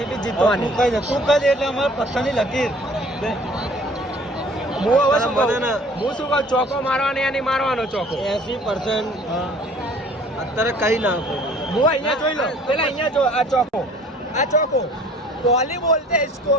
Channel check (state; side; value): normal; both; correlation 0.52